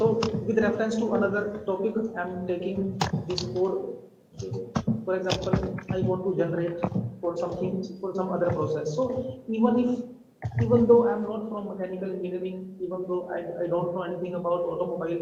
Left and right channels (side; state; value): both; identical; correlation 1.00